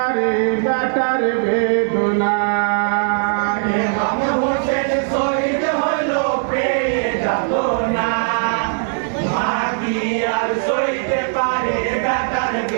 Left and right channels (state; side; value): silent; left; digital silence